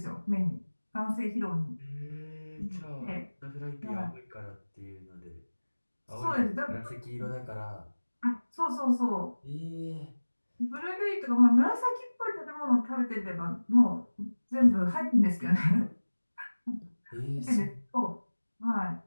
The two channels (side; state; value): both; inverted; correlation -1.00